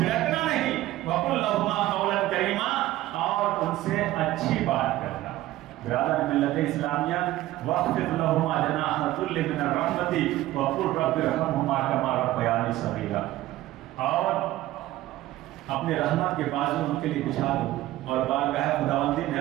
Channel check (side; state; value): left; quieter; 15.7 dB